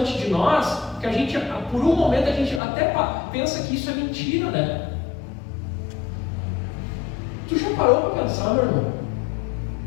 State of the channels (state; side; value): drops out; right; at 2.6 s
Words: de nós que a gente, por um momento, a gente até pensa que isso é mentira, né? Tu já parou para pensar, meu irmão,